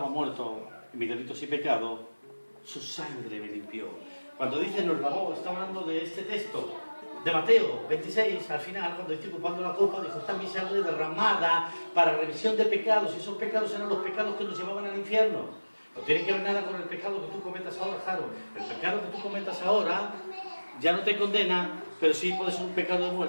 muerto en mis delitos y pecados, su sangre me limpió. Cuando dice nos lavó, está hablando de este texto de Mateo 26, al final, cuando estoy ocupando la copa, dijo, está mi sangre derramada para remisión de pecados, y esos pecados eran los pecados que nos llevaban al infierno. No tiene que ver nada con el pecado que tú cometas ahora, Jaro. El pecado que tú cometas ahora ya no te condena, pero sí puede ser un pecado de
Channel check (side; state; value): both; inverted; correlation -1.00